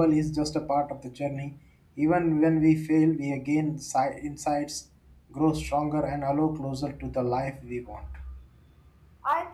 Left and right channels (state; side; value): identical; both; correlation 1.00